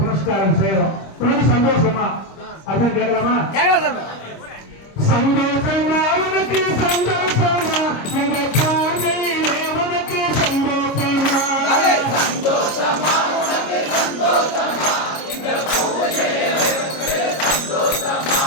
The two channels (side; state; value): right; late; 25 ms